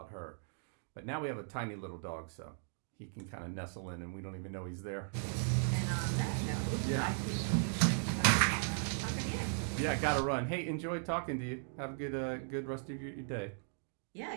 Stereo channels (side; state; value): left; silent; digital silence